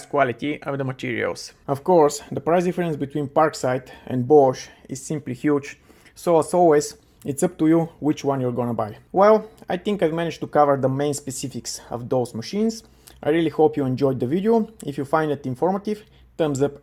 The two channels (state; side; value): identical; both; correlation 1.00